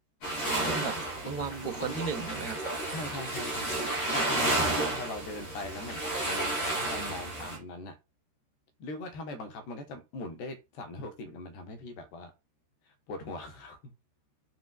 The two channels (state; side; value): late; right; 13 ms